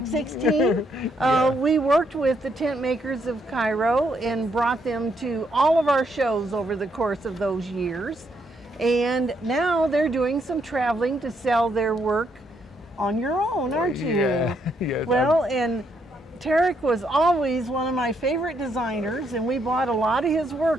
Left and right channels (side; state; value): both; normal; correlation 0.75